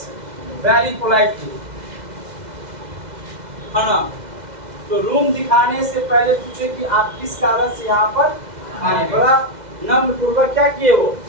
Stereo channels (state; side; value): late; left; 2.0 ms